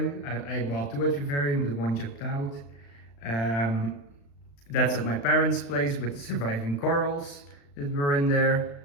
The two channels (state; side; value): late; right; 35 ms